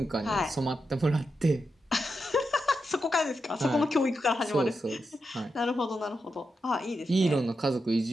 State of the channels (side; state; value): both; normal; correlation 0.87